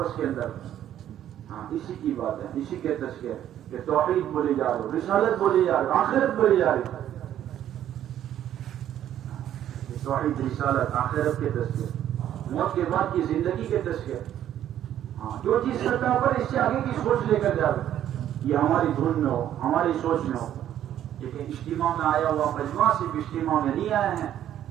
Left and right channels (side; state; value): left; quieter; 11.2 dB